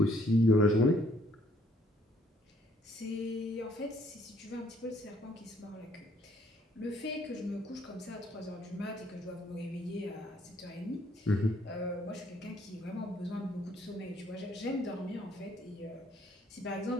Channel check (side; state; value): both; normal; correlation 0.65